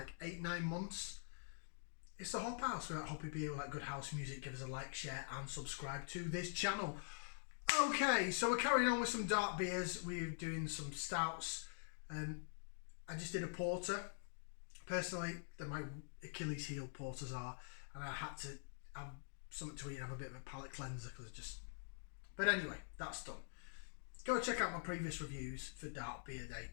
8-9 months. It's the Hop House. We're at Hoppy Beer, we like good house music. Give us a like, share and subscribe to this channel. Okay, so we're carrying on with some dark beers. We're doing some stouts. I just did a porter. Personally, they're my Achilles heel, porters are, and I had to have something to eat and have a bit of a palate cleanser because but anyway, that's done. Go check out my previous reviews for Dark Beer Day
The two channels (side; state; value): right; silent; digital silence